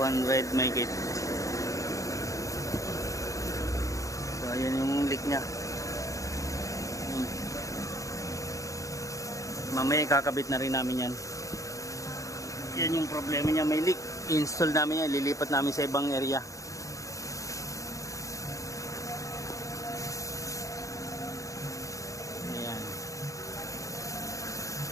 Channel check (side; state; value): right; late; 0.16 ms